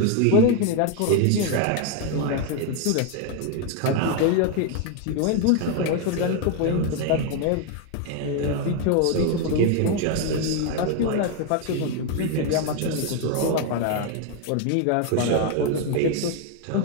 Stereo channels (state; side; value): different; both; correlation 0.01